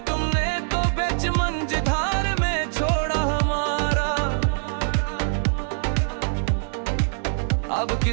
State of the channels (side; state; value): left; silent; digital silence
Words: तुमने तो बेच मंझधार में छोड़ा हमारा। अब